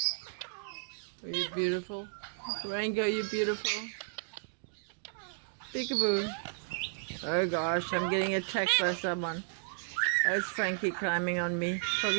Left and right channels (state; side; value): silent; left; digital silence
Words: Oh, you're beautiful. Rango, you're beautiful. Peekaboo. Oh gosh, I'm getting attacked by someone. There's Frankie climbing on me.